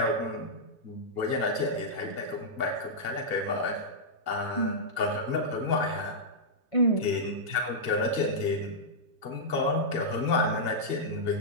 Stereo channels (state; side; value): late; right; 1.6 ms